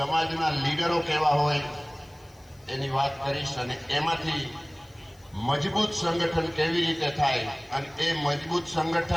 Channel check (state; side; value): noise; left; hiss, 30 dB below the sound